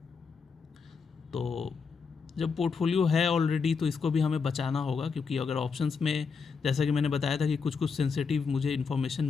तो जब पोर्टफोलियो है ऑलरेडी तो इसको भी हमें बचाना होगा, क्योंकि अगर ऑप्शंस में, जैसा कि मैंने बताया था कि कुछ सेंसिटिव मुझे इन्फॉर्मेशन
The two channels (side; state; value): right; quieter; 5.4 dB